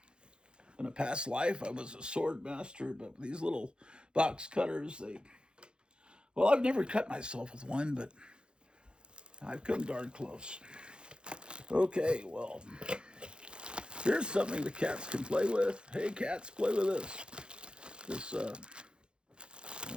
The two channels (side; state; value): left; late; 0.052 ms